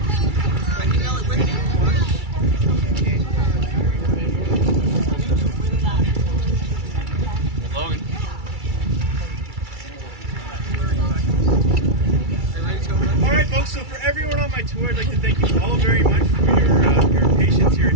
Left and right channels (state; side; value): late; left; 2.3 ms